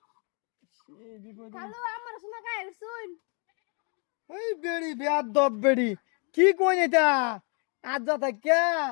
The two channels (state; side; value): quieter; right; 36.6 dB